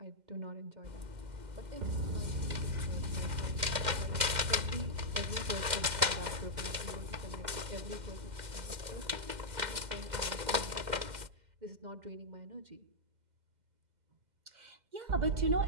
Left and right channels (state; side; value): late; left; 2.1 ms